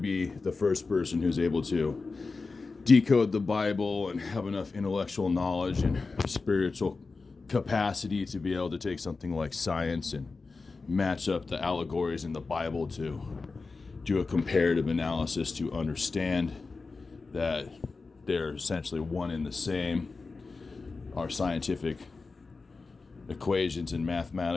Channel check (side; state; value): right; quieter; 4.1 dB